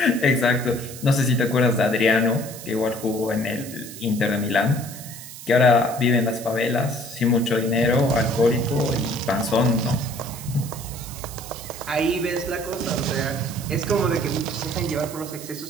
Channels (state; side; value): noise; right; hiss, 13 dB below the sound